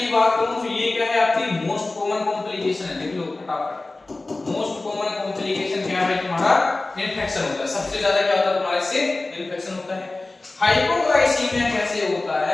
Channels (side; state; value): right; quieter; 3.1 dB